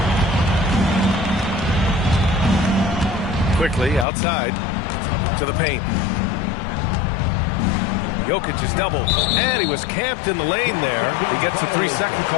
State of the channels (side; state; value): right; drops out; at 4.0 s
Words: Quickly outside to the paint. Jokic is doubled, and he was camped in the lane there. He gets a 3-second